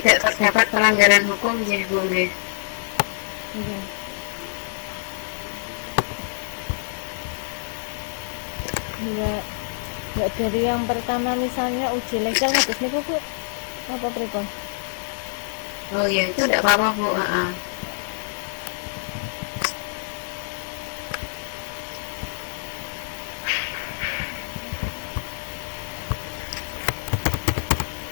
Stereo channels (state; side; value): silent; right; digital silence